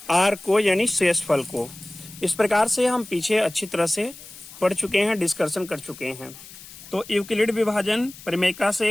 r को, यानी शेषफल को। इस प्रकार से हम पीछे अच्छी तरह से पढ़ चुके हैं, डिस्कशन कर चुके हैं। तो यूक्लिड विभाजन प्रमेय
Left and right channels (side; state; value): left; noise; hiss, 18 dB below the sound